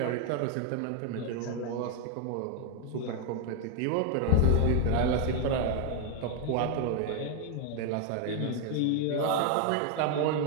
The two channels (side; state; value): both; different; correlation 0.01